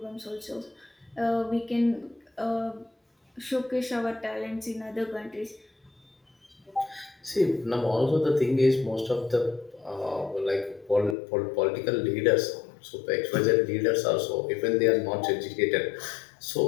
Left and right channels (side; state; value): right; drops out; at 11.2 s